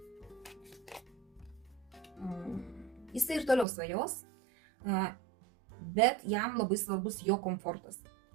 Jisai ir toliau svajos, bet jam labai svarbus jo komfortas.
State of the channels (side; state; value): left; drops out; at 3.7 s